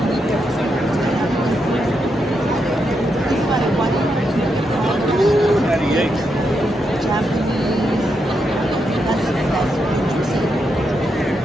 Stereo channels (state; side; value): normal; both; correlation 0.83